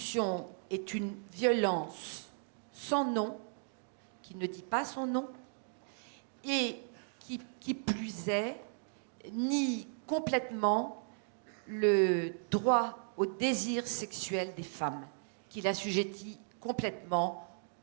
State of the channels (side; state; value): left; silent; digital silence